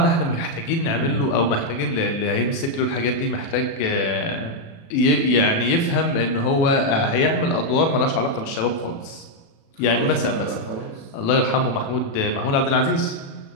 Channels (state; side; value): late; right; 36 ms